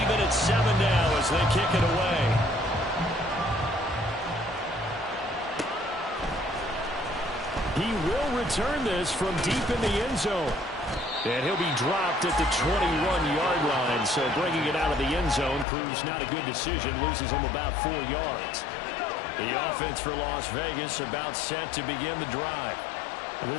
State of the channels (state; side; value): drops out; right; at 15.7 s